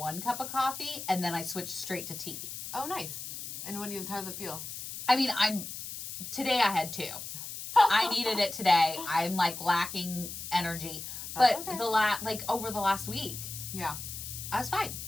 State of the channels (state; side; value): noise; left; hiss, 8 dB below the sound